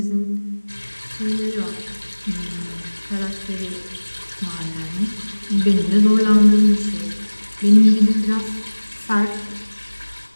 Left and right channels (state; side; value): inverted; both; correlation -1.00